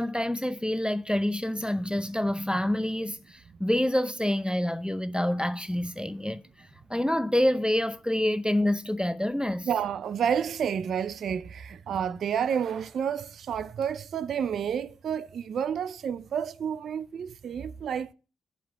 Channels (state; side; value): normal; both; correlation 0.88